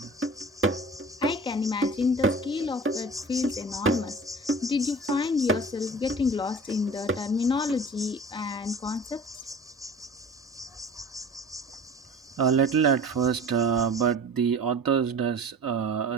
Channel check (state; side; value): normal; both; correlation 0.41